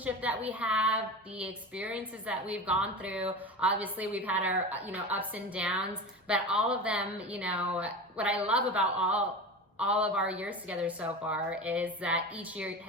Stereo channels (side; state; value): both; normal; correlation 0.29